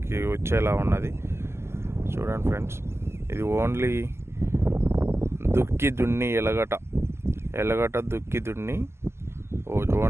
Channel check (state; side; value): late; left; 0.12 ms